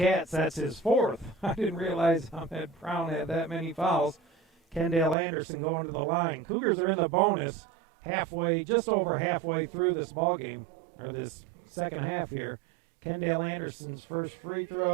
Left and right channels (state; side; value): drops out; left; at 5.2 s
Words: that's his fourth. I didn't realize Ahmed Brown had that many fouls. Kendall Anderson going to the line. Cougars are in the bonus halfway, just over halfway through this ball game, or this second half here. Kendall Anderson's first free